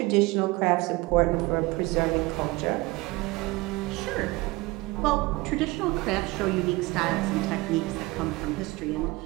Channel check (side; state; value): left; quieter; 22.0 dB